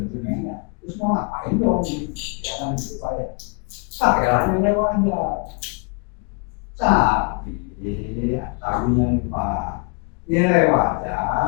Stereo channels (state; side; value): quieter; right; 36.5 dB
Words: dokumennya. Terus mau ngapain dong? Ya kan gitu Pak ya. Pakai lainnya aja. Tapi yang Pak, nilai